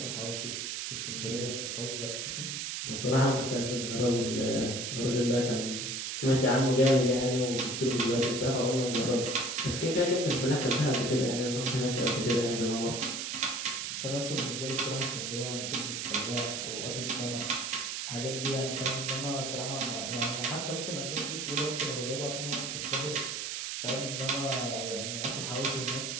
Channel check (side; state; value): right; noise; hiss, 3 dB below the sound